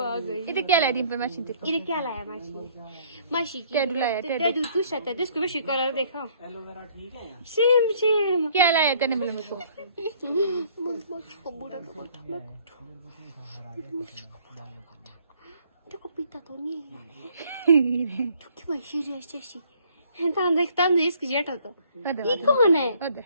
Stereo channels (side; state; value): both; inverted; correlation -0.60